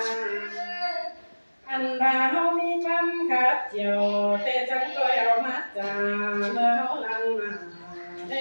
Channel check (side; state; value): both; inverted; correlation -1.00